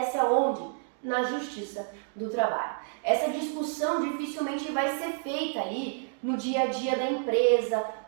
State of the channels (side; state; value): left; silent; digital silence